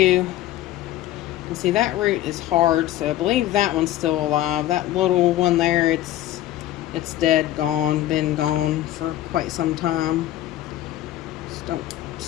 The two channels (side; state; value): right; quieter; 14.0 dB